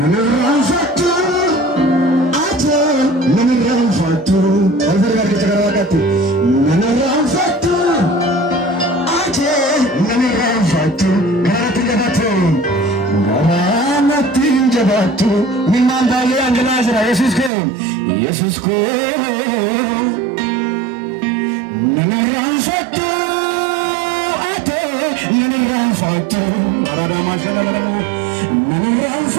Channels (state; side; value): drops out; left; at 17.5 s